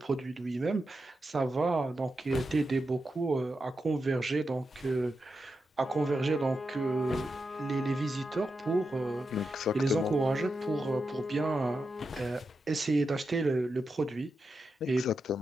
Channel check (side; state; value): both; normal; correlation 0.88